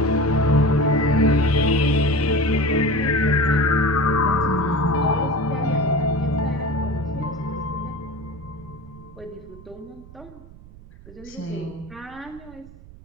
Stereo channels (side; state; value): right; noise; rumble, 20 dB below the sound